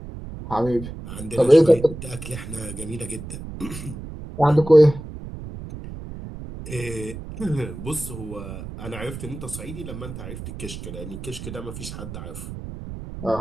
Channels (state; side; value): noise; right; rumble, 10 dB below the sound